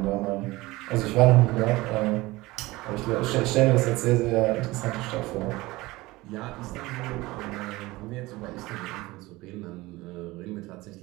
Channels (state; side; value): quieter; left; 20.2 dB